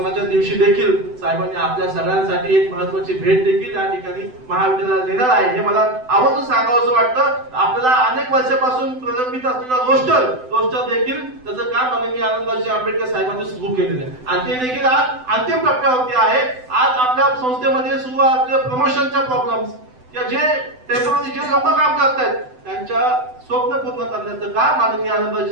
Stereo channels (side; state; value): left; late; 7.9 ms